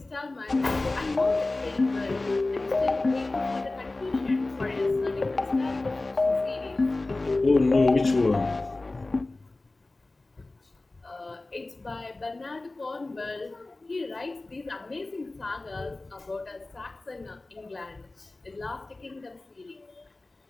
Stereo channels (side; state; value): right; quieter; 3.1 dB